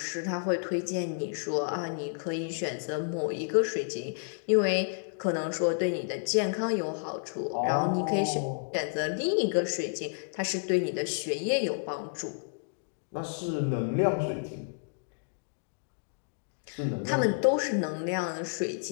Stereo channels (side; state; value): right; silent; digital silence